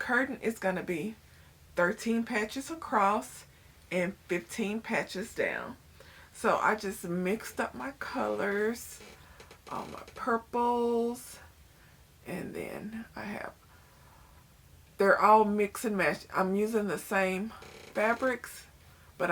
is going to be 13 patches across and 15 patches down. So I just mixed up my colors, all my purples, and then they're all mix and match. I'm using the same fabrics, but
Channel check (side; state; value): both; identical; correlation 1.00